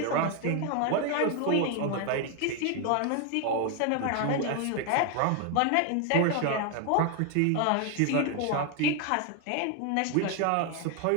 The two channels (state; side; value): different; both; correlation 0.01